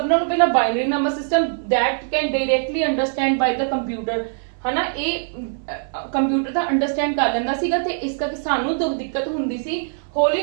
ਨਾਲੋਂ ਪਹਿਲਾਂ binary number system that can directly understand by the computer, ਹਨਾ, ਇਹ ਕੰਪਿਊਟਰ ਦਾ ਅੰਡਰਸਟੈਂਡ ਕਰ ਲੈਂਦਾ ਸੀਗਾ ਤੇ ਇਸ ਕਰਕੇ ਸਾਨੂੰ ਦਿੱਕਤ ਹੁੰਦੀ ਸੀ।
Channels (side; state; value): left; silent; 64 dB below the other